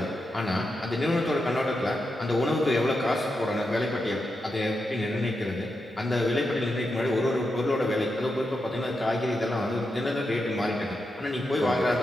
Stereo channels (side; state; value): both; normal; correlation 0.86